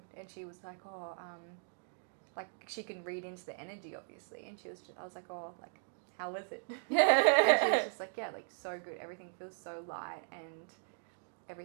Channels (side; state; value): left; silent; digital silence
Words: and she was like, like she can read into the energy obviously, and I was like, like, how was it? And she was just like, like so good, everything feels so light and